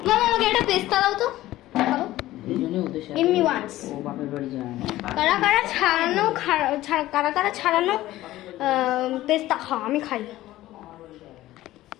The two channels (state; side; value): quieter; right; 15.7 dB